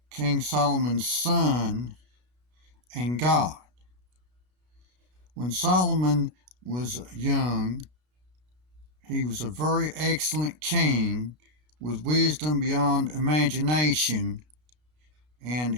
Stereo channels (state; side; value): late; left; 33 ms